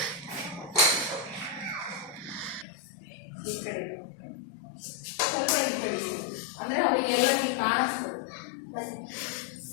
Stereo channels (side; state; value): right; drops out; at 2.7 s